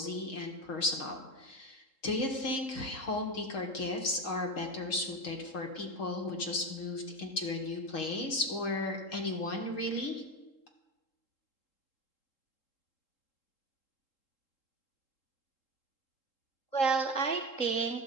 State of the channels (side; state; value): right; late; 3.7 ms